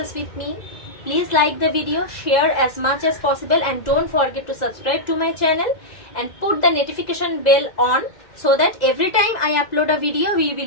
with me, please like the video, share as much as possible, and don't forget to subscribe to my channel and put the notification bell on so that every time I upload a video we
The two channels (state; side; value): late; right; 2.0 ms